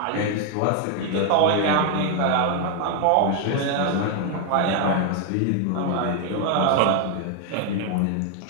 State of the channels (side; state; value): both; different; correlation 0.01